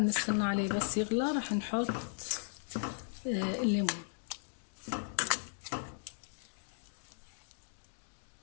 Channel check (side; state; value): right; silent; digital silence